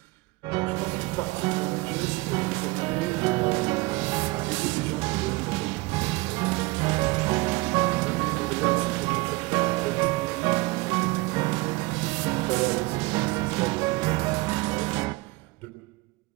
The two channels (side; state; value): left; quieter; 23.2 dB